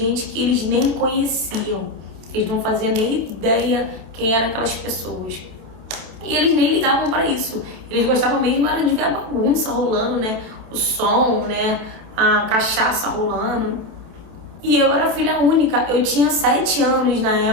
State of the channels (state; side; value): late; left; 27 ms